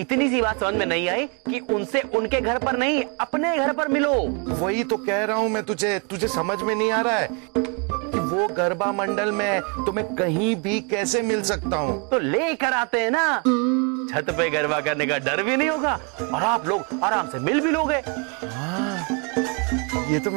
सी बात समझ में नहीं आई कि उनसे उनके घर पर नहीं अपने घर पर मिलो। वही तो कह रहा हूँ मैं तुझे समझ में नहीं आ रहा है कि वो गरबा मंडल में है तो मैं कहीं भी कैसे मिल सकता हूँ? तो लेकर आते हैं ना, छत पे गरबा करने का डर भी नहीं होगा और आप लोग आराम से मिल भी लोगे। हाँ, ये तो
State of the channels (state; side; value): quieter; left; 34.0 dB